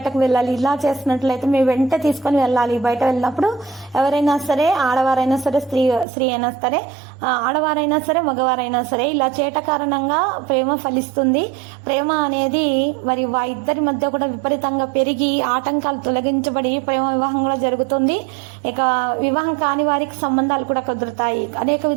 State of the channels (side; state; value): left; drops out; at 6.1 s